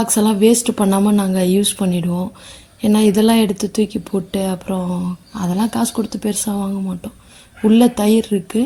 எல்லாம் வேஸ்ட்டு பண்ணாமல் நாங்கள் யூஸ் பண்ணிவிடுவோம். ஏன்னா இதெல்லாம் எடுத்து தூக்கி போட்டு அப்புறம் அதெல்லாம் காசு கொடுத்து பெருசாக வாங்க மாட்டோம். உள்ளே தயிர்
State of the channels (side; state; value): both; identical; correlation 1.00